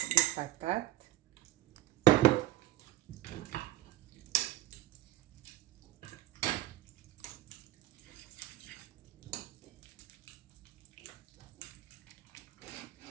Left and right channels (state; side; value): quieter; left; 15.8 dB